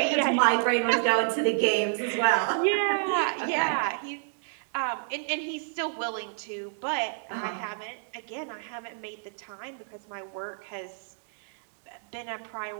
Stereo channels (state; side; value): silent; left; digital silence